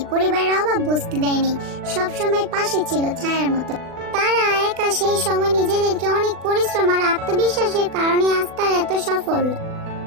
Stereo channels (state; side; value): late; left; 40 ms